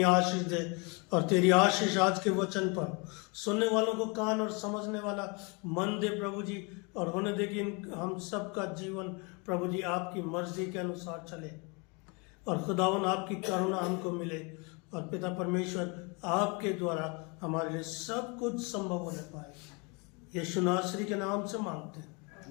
आशीष दे, और तेरी आशीष आज के वचन पर सुनने वालों को कान और समझने वाला मन दे प्रभु जी, और होने दे कि हम सबका जीवन प्रभु जी आपकी मर्जी के अनुसार चले, और खुदावन आपकी करुणा हमको मिले, और पिता परमेश्वर आपके द्वारा हमारे लिए सब कुछ संभव होने पाए। यीशु नासरी के नाम से मांगते हैं,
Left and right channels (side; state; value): right; quieter; 31.1 dB